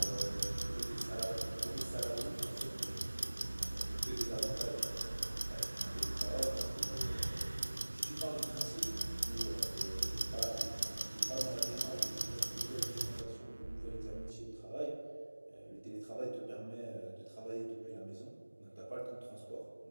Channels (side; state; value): both; inverted; correlation -1.00